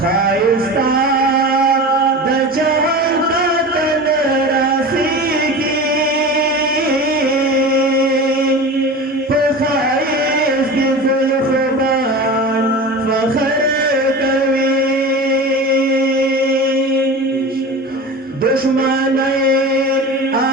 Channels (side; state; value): both; normal; correlation 0.32